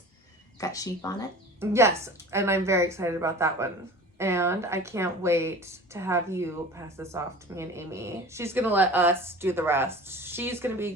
got sheep on it. Yes, and I'm very excited about that one. And I can't wait to have you pass this off to me and Aimee. She's gonna let us do the rest. She's gonna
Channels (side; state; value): both; normal; correlation 0.39